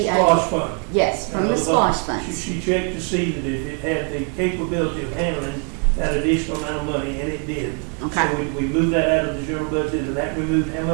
SPLOST fund. Yes, from the SPLOST funds. She checked to see that if it had the capability of handling that additional amount of money, and it did. Okay. So we moved that out of the general budget, and that removed how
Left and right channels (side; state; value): left; quieter; 38.4 dB